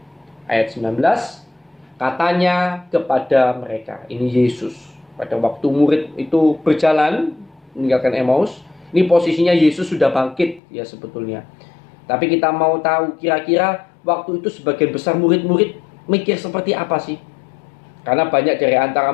Ayat 19, katanya kepada mereka, ini Yesus. Pada waktu murid itu berjalan meninggalkan Emmaus, ini posisinya Yesus sudah bangkit ya sebetulnya. Tapi kita mau tahu kira-kira waktu itu sebagian besar murid-murid mikir seperti apa sih? Karena banyak dari antara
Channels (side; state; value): right; drops out; at 10.6 s